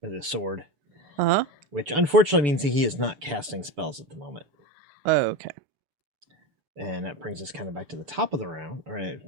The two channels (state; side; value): late; left; 6.9 ms